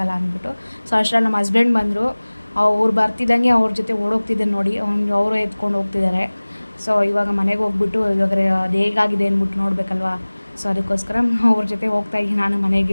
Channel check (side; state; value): both; inverted; correlation -1.00